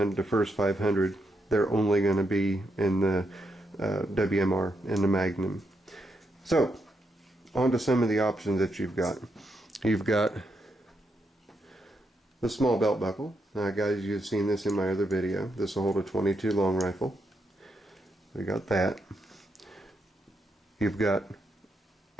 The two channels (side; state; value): both; normal; correlation 0.81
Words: 500, they're only going to be in the WMR, in the Magnum. So, on to some of the options that you've got. You've got the small belt buckle. Now guys, you've seen this in my other video. This will hold a 22 long rifle. We got that. You've got